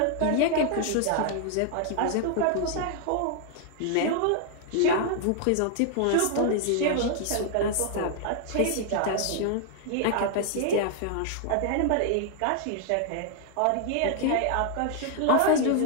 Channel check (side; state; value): both; different; correlation 0.00